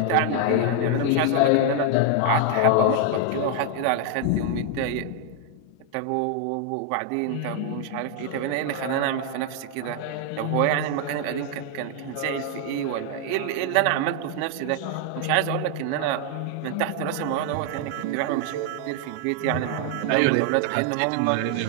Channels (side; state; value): both; different; correlation 0.00